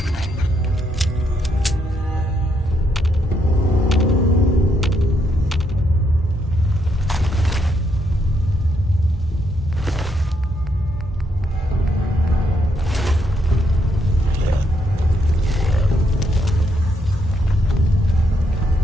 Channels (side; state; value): both; normal; correlation 0.76